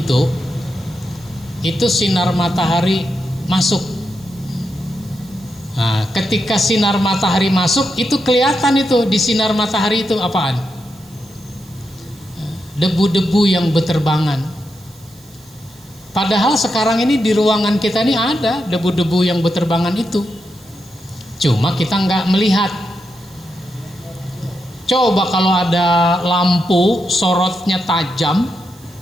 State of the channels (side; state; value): right; noise; hiss, 25 dB below the sound